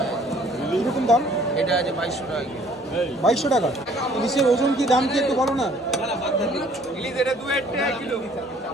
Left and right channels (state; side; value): normal; both; correlation 0.58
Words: কিরকম দাম? এটা আছে 2200 টাকা। 2200 টাকা। ইলিশের ওজন কি, দাম কি একটু বলো না? ইলিশ এটা 2 টাকা কিলো,